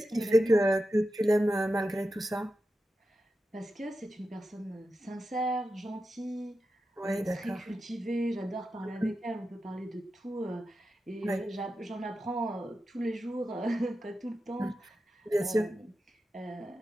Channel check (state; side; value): normal; both; correlation 0.91